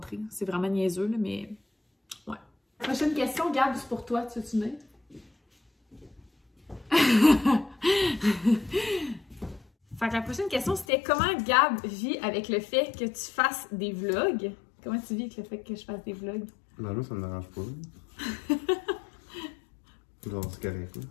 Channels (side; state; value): right; drops out; at 10.9 s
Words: C'est vraiment niaiseux, là, mais ouais. Prochaine question, Gab, c'est pour toi, tu veux-tu venir? Fait que la prochaine question, c'était comment Gab vit avec le fait que tu fasses des vlogs? Comment tu vis avec le fait que je fasse des vlogs? Ben là, ça me dérange pas. Genre, c'est correct, là.